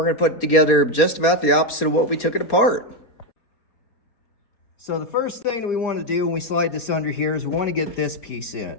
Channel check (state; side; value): late; right; 4.2 ms